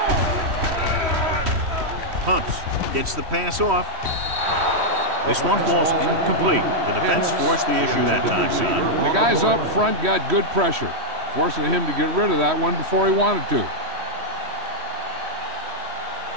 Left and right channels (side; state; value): left; late; 3.1 ms